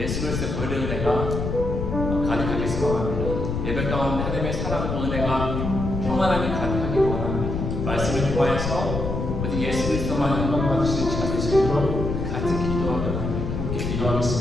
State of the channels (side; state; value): left; noise; rumble, 3 dB below the sound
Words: 그리스도의 보혈의 은혜가 가득하게 소망합니다. 예배 가운데 하나님의 사랑과 은혜가 평안함이 가득하게 원합니다. 말씀을 통하여서 오직 예수 그리스도만 영광 받으시는 시간 되시도록 같이 기도하며 함께